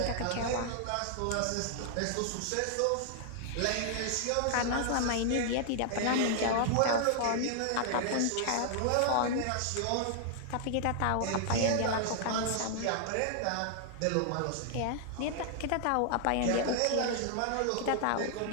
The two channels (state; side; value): different; both; correlation -0.01